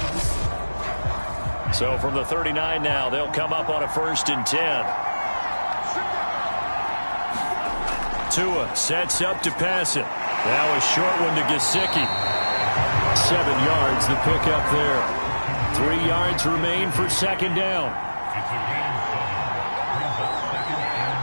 So from the 39 now, they'll come up on a 1st and 10. Tua sets up to pass it. Now a short one to Gesicki. 7 yards the pickup there. 3 yards remain for 2nd down.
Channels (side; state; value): both; inverted; correlation -1.00